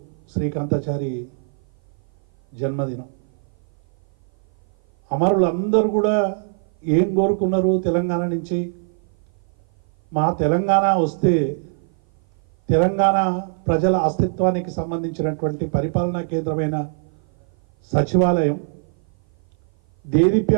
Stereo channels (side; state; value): left; silent; 56 dB below the other